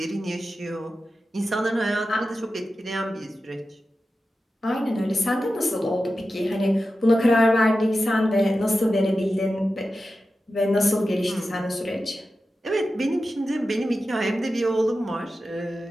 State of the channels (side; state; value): both; normal; correlation 0.92